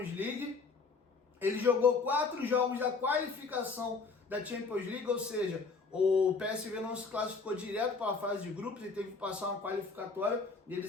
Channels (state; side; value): quieter; right; 4.4 dB